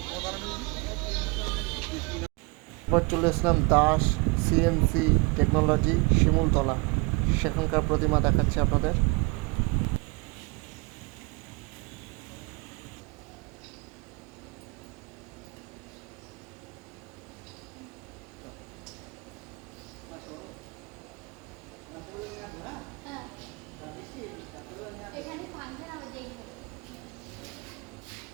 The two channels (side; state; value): left; quieter; 29.1 dB